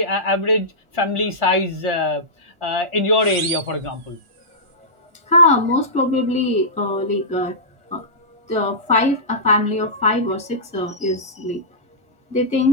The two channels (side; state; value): left; late; 1.4 ms